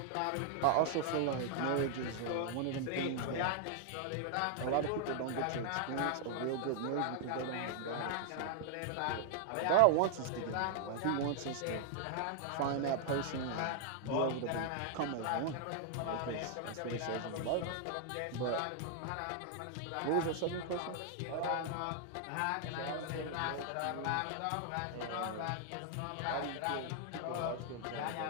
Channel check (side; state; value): both; different; correlation 0.00